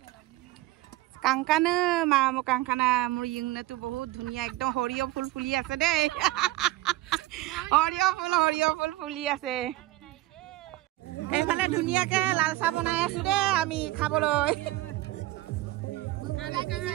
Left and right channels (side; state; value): left; quieter; 17.7 dB